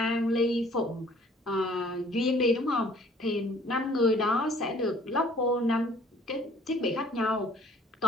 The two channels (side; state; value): both; normal; correlation 0.56